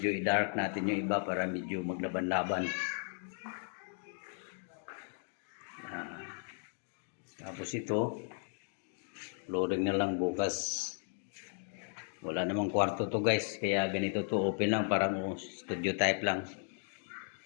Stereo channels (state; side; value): silent; right; 54 dB below the other